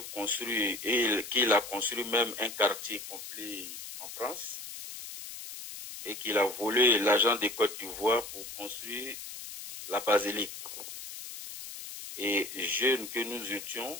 construire, et qu'il a construit même un quartier complet en France, et qu'il a volé l'argent des Côtes d'Ivoire pour construire la basilique. Et jeunes que nous étions,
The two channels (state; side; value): noise; left; hiss, 11 dB below the sound